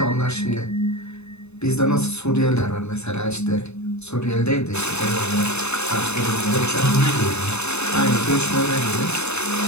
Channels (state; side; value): late; right; 0.81 ms